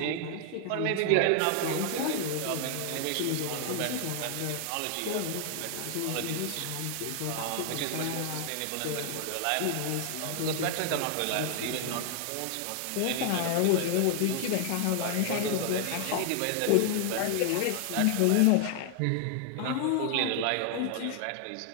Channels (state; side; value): different; both; correlation 0.00